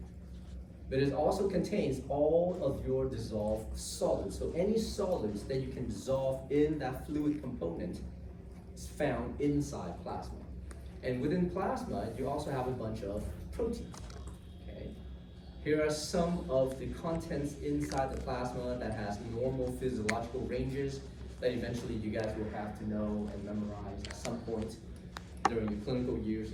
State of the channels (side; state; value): both; identical; correlation 1.00